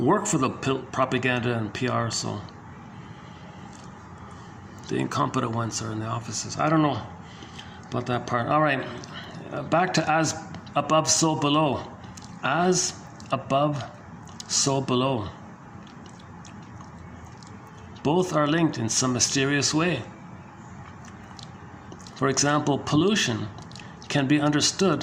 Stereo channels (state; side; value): identical; both; correlation 1.00